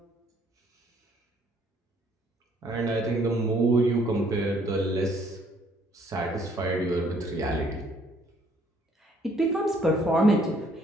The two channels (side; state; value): both; normal; correlation 0.64